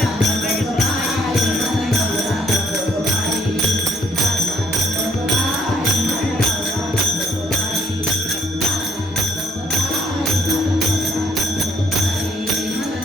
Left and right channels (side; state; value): both; normal; correlation 0.65